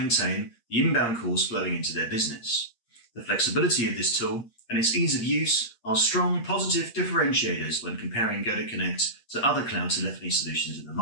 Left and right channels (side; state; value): right; late; 8.6 ms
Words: the inbound calls flowing into their business. The flexibility of this tool and its ease of use are strong positive differentiators when comparing GoToConnect to other cloud telephony solutions in the